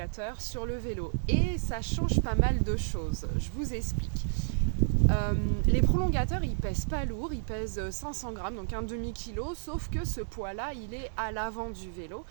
sur le vélo et ça change pas mal de choses. Je vous explique. Les prolongateurs, ils pèsent pas lourd, ils pèsent 500 grammes, donc un demi-kilo, sauf que ce poids-là, il est à l'avant du vélo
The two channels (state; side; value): silent; left; digital silence